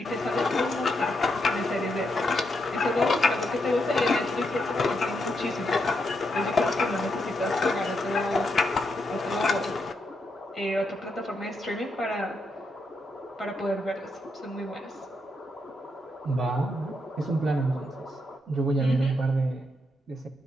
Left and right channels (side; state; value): both; normal; correlation 0.81